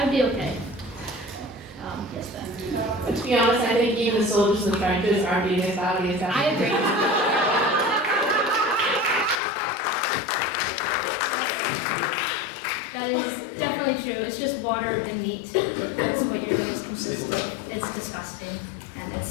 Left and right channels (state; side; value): drops out; right; at 9.3 s